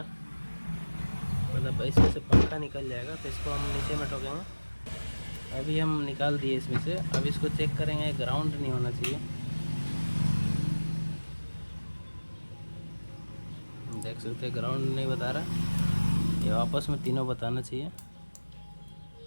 मतलब इसमें से पंखा निकल जाएगा। तो इसको हम नीचे में ठोकेंगे। अभी हम निकाल दिए इसमें से। अब इसको चेक करेंगे, ग्राउंड नहीं होना चाहिए। देख सकते हैं ग्राउंड नहीं बता रहा, ये आपस में तीनों बताना चाहिए।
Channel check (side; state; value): both; inverted; correlation -1.00